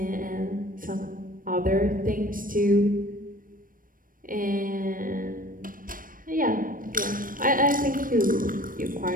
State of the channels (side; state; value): left; late; 0.40 ms